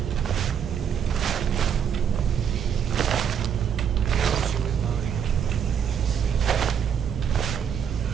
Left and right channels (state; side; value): quieter; left; 8.1 dB